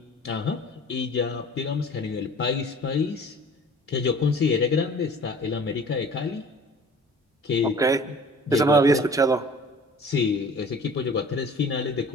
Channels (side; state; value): both; normal; correlation 0.46